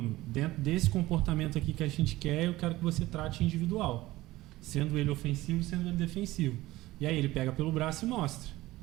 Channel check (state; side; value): quieter; left; 17.7 dB